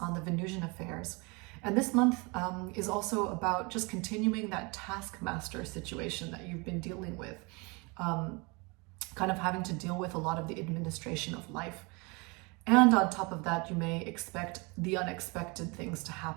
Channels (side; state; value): left; quieter; 28.6 dB